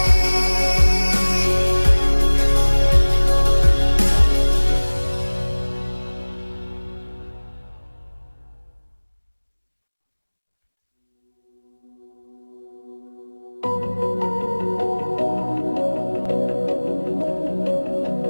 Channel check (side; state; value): both; inverted; correlation -1.00